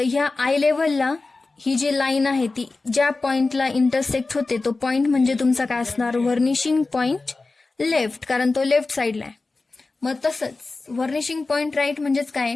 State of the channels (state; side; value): quieter; right; 3.6 dB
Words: ह्या आय लेवलला ही जी लाईन आहे ती ज्या पॉइंटला इंटरसेक्ट होते, तो पॉइंट म्हणजे तुमचा काय असणार, व्हर्निशिंग पॉइंट लेफ्ट, कारण तो लेफ्ट साइडला आहे. मग तसंच व्हर्निशिंग पॉइंट राईट म्हणजेच काय,